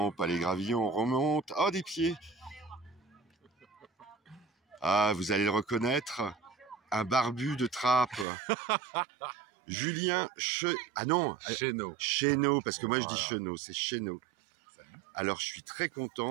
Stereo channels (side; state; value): left; drops out; at 8.2 s